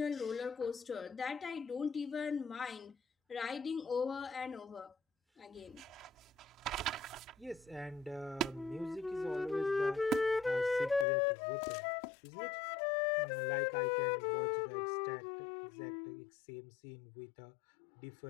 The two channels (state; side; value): drops out; right; at 11.1 s